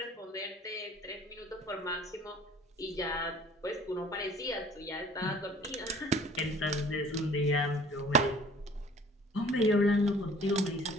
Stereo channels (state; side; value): normal; both; correlation 0.51